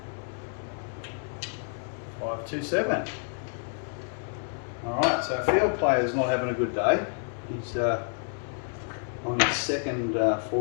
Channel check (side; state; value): right; silent; 59 dB below the other